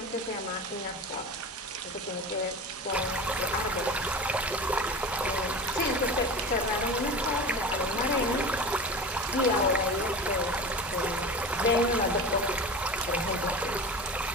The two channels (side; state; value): both; normal; correlation 0.31